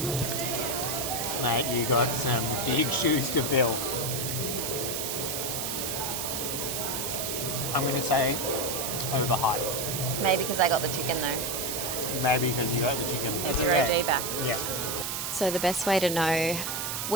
Mate, you got some big shoes to fill. I'm gonna say overhyped. Maybe because I got the chicken though. Maybe because you got the chicken. It's your OG back. Yeah. So the best way to know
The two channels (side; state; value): right; noise; hiss, 2 dB below the sound